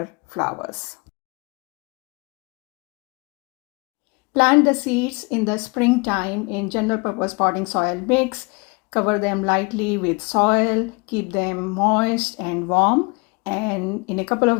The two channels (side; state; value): right; quieter; 29.2 dB